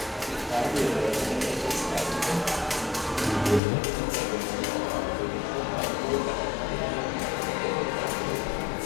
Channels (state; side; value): drops out; right; at 3.6 s